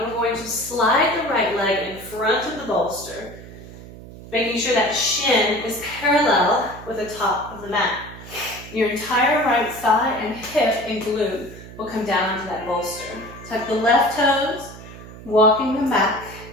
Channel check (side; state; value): right; noise; hum, 16 dB below the sound